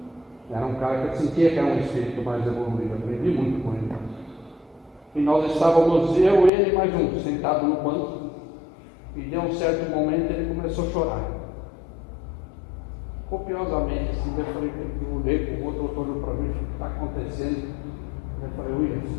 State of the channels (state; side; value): drops out; right; at 6.5 s